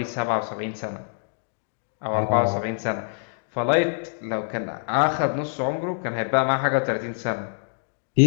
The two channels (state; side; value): silent; right; digital silence